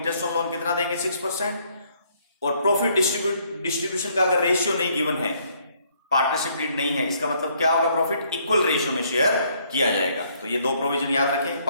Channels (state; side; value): inverted; both; correlation -0.67